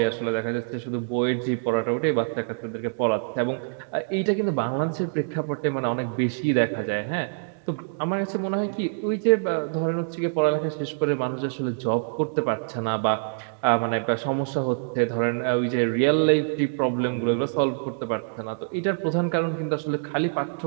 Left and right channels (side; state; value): left; silent; digital silence